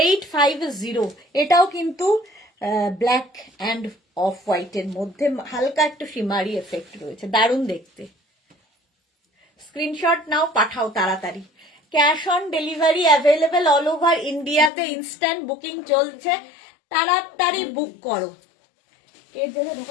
এটাও কিন্তু ব্ল্যাক অ্যান্ড অফ হোয়াইট এর মধ্যে হালকা একটু শিমারি এফেক্ট রয়েছে দারুণ দেখতে স্ক্রিনশট নাও পাঠাও তাড়াতাড়ি cash on delivery available all over ইন্ডিয়াতে ইনস্ট্যান্ট বুকিং চলছে তাড়াতাড়ি বুক করো এর জায়গায়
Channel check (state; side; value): drops out; right; at 14.7 s